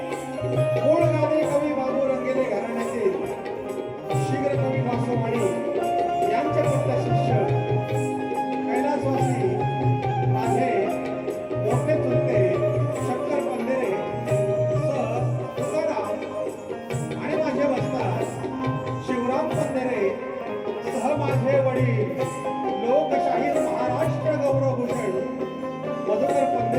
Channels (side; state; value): both; identical; correlation 1.00